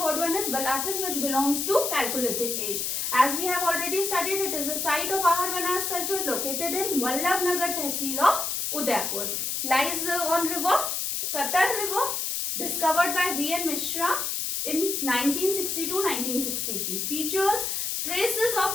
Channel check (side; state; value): left; noise; hiss, 1 dB below the sound